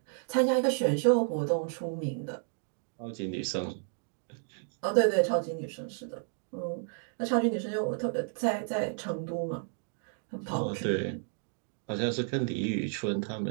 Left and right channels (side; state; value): left; silent; 56 dB below the other